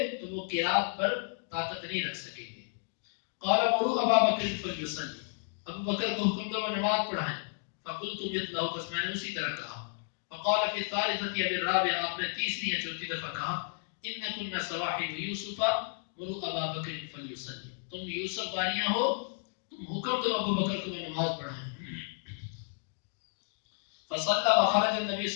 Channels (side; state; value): right; silent; 56 dB below the other